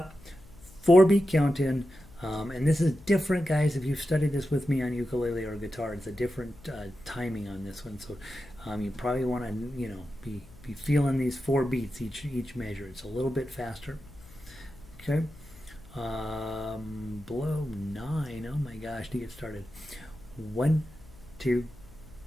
4-beat count in, and this is different, guys. If you've studied this with me on ukulele or guitar, it's a different timing on this one. So you probably want to, be feeling these 4 beats each measure. It's a little bit faster. Okay. Below 9. Oh my gosh, to get started. 1, 2,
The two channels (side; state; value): left; noise; hum, 22 dB below the sound